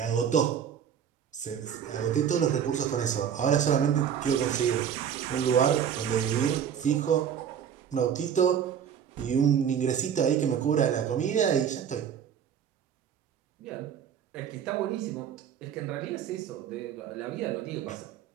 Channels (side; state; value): left; quieter; 8.4 dB